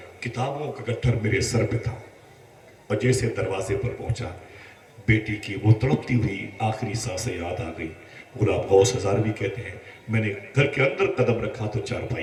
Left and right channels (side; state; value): both; identical; correlation 1.00